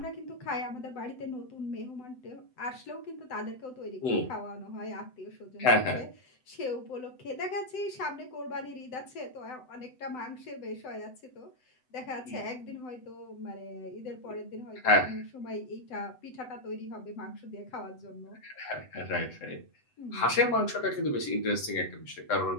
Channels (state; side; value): late; right; 7.9 ms